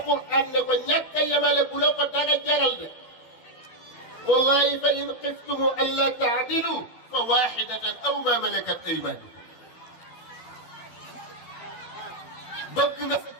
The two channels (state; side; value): late; right; 12 ms